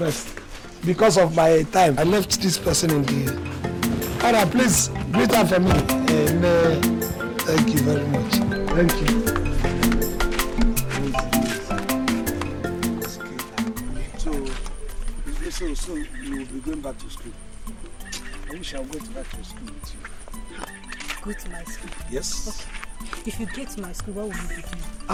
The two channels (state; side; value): identical; both; correlation 1.00